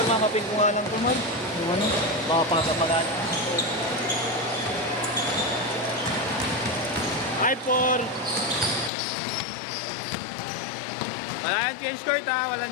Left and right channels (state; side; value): drops out; right; at 8.9 s